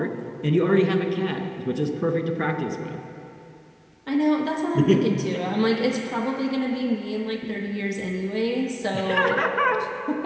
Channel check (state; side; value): identical; both; correlation 1.00